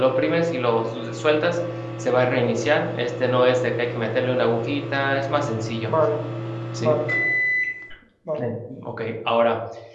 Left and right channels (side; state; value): both; identical; correlation 1.00